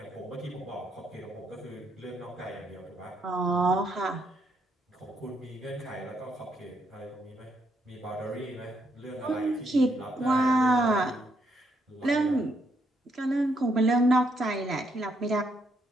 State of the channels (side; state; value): both; normal; correlation 0.75